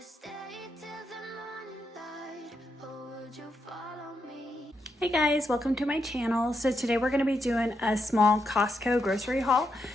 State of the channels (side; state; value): both; normal; correlation 0.82